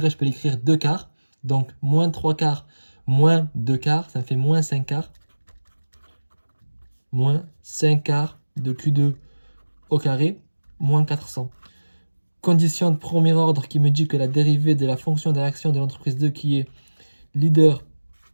je peux l'écrire 2 quarts. Donc, moins 3 quarts, moins 2 quarts, ça me fait moins 5 quarts. Moins 5 quarts de Q2 au carré, moins 400. Condition de premier ordre qui me dit que la dérivée de la fonction de réaction de l'entreprise 2 qui est leader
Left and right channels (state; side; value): inverted; both; correlation -1.00